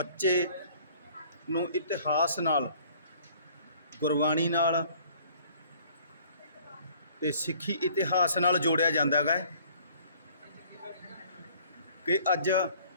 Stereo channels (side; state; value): both; inverted; correlation -0.55